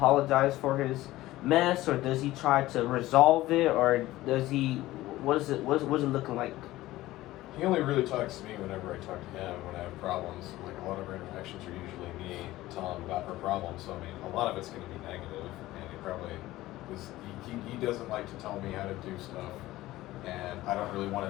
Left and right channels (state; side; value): quieter; right; 16.8 dB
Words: for his mess, or does he try to resolve it, or does he what's it looking like? He only really talks to me whenever I talk to him when I have problems. Like a lot of our interactions are usually me telling him about our problems. So I mean, a lot of it's going to be negative, and he probably he doesn't like to tell me how to do stuff, and I don't really